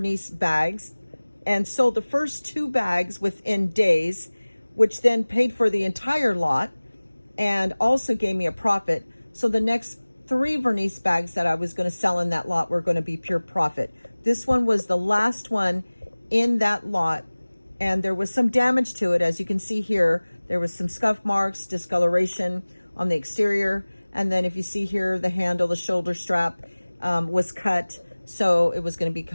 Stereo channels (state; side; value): inverted; both; correlation -1.00